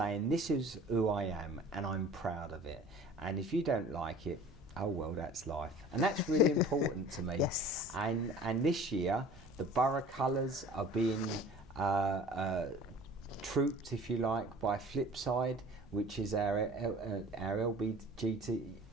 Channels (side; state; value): right; noise; rumble, 24 dB below the sound